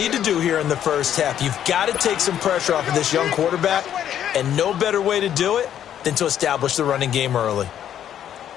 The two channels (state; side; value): quieter; right; 10.2 dB